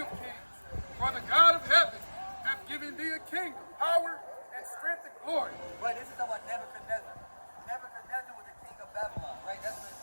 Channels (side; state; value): both; inverted; correlation -1.00